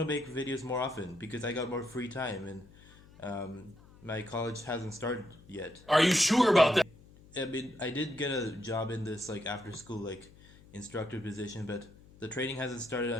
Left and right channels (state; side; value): noise; left; hum, 23 dB below the sound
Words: make videos more often because I got more free time and my college hasn't started yet. Are you sure I about that? mean, I did get a job in this like after school like instructor position, but the training hasn't started